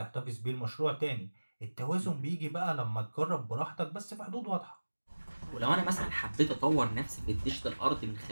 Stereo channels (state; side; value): inverted; both; correlation -1.00